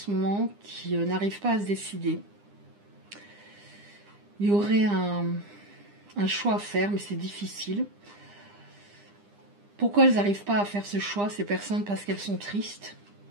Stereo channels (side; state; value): left; late; 9.9 ms